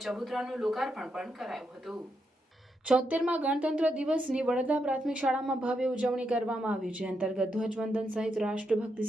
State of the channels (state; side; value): normal; both; correlation 0.82